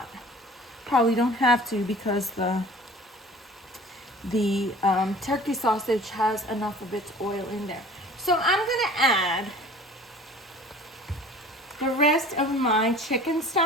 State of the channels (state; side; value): normal; both; correlation 0.46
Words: Probably don't have to because the turkey sausage has enough of its oil in there. So I'm gonna add the rest of my chicken